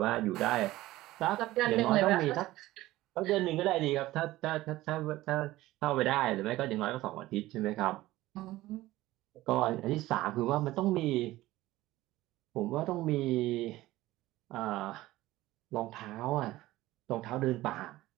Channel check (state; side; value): quieter; left; 17.0 dB